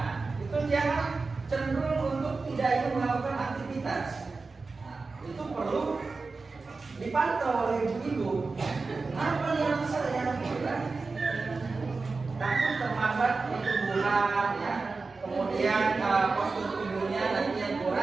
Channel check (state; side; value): quieter; left; 4.1 dB